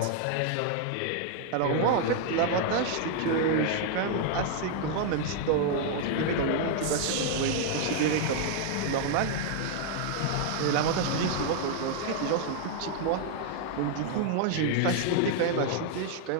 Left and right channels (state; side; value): different; both; correlation 0.00